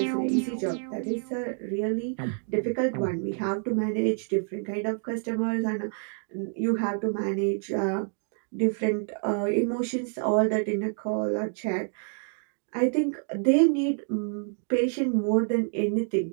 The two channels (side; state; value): left; silent; 60 dB below the other